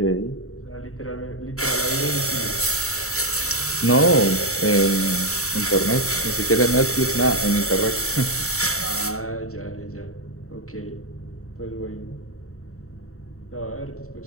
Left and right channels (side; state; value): right; late; 0.64 ms